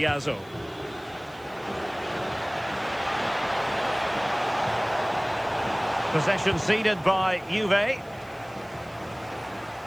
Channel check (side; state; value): right; noise; hiss, 27 dB below the sound